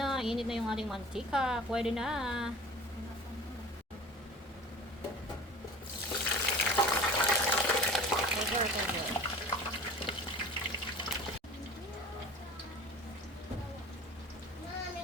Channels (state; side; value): normal; both; correlation 0.41